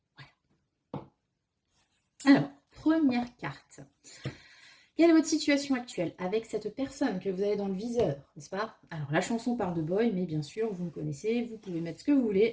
Alors, première carte. Quelle est votre situation actuelle avec cette personne que vous avez dans le viseur, n'est-ce pas? Alors, la chanson parle de boy, mais bien sûr, vous me connaissez, vous pouvez mettre ce que vous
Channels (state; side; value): identical; both; correlation 1.00